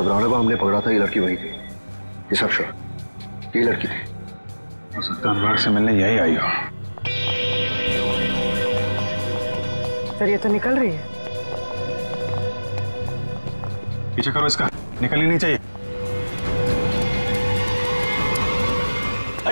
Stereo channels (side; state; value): both; inverted; correlation -1.00